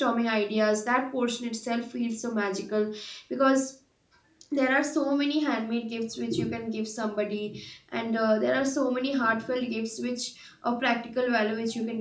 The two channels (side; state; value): both; identical; correlation 1.00